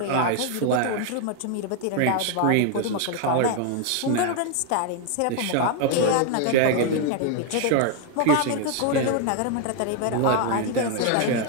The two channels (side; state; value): both; different; correlation 0.01